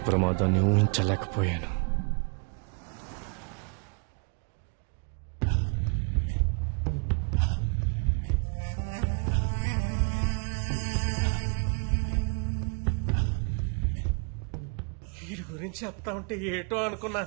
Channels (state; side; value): quieter; left; 36.4 dB